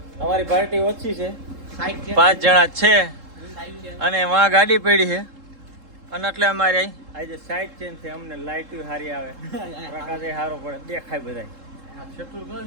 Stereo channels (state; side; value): late; left; 3.7 ms